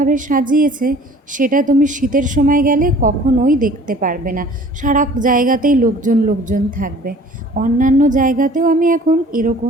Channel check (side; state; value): both; normal; correlation 0.49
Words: সাজিয়েছে সেটা তুমি শীতের সময় গেলে কখনোই দেখতে পারবে না। সারা জায়গাতেই লোকজন লোকজন থাকবে। অন্যান্য জায়গাতেও আমি এখন